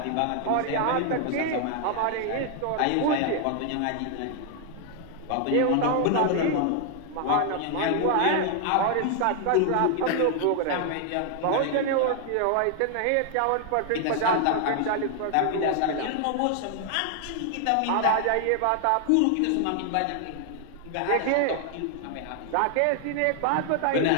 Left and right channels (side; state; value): both; different; correlation 0.00